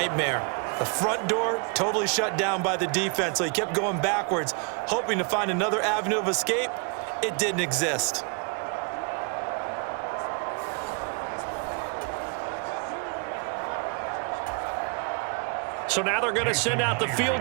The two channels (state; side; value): quieter; left; 36.5 dB